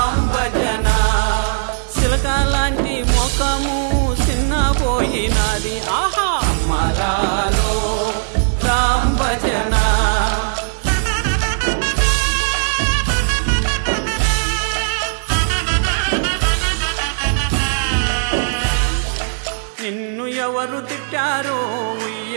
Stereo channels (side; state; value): left; silent; digital silence